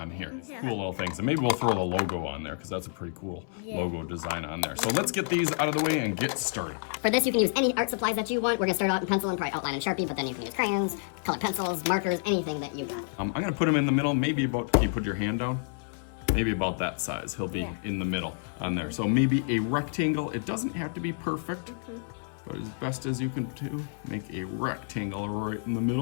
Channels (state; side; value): silent; right; 58 dB below the other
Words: here. Cool little things. And maybe we'll throw the logo on there because that's a pretty cool logo design on there. So let's get these out of the way and get started. For this, you can use any art supplies that you want. We're gonna start out in pencil and probably outline in Sharpie, but then you can use crayons, colored pencils, markers, anything that you got. I'm gonna put him in the middle, maybe about, can you put your hand down? Maybe about that size. He'll be in the middle on there. So maybe a rectangle. It doesn't have to be perfect, but as best as you can do, make a rectangle right in the